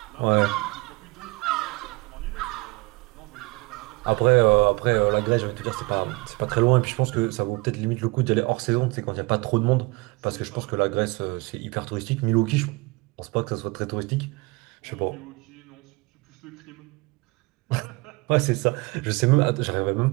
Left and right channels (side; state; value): left; quieter; 25.4 dB